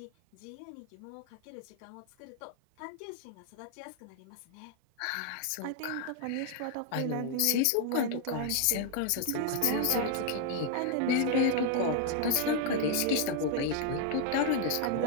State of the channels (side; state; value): both; different; correlation 0.00